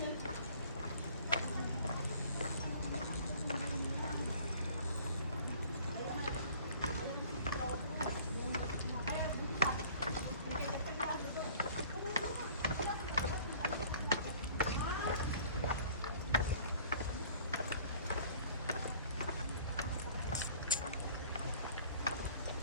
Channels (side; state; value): both; inverted; correlation -0.51